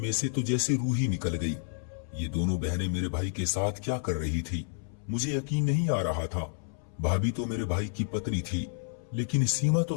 से तो जैसी रूह ही निकल गई। ये दोनों बहनें मेरे भाई के साथ क्या कर रही थी, मुझे यकीन नहीं आ रहा था। भाभी तो मेरे भाई की पत्नी थी, लेकिन सीमा तो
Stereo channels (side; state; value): right; silent; 58 dB below the other